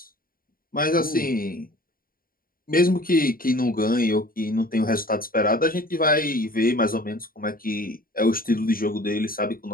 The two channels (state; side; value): late; right; 0.42 ms